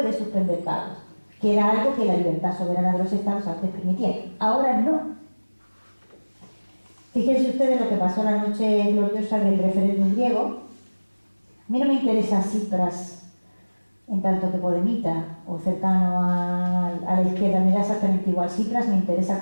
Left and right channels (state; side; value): inverted; both; correlation -1.00